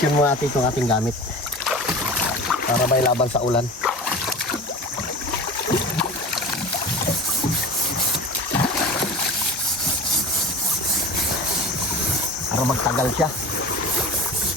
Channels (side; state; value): both; normal; correlation 0.35